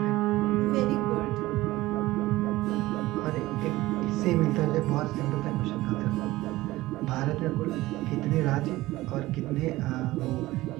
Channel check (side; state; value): left; quieter; 17.9 dB